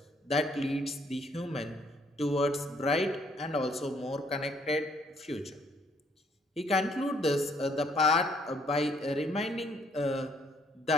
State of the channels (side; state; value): both; normal; correlation 0.66